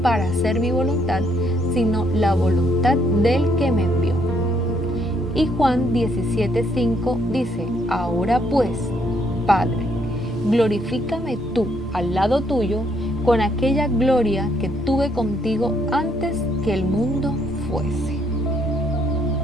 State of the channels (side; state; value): both; normal; correlation 0.71